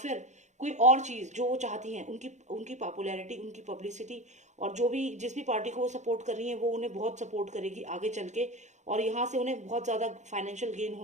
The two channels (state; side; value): late; left; 0.34 ms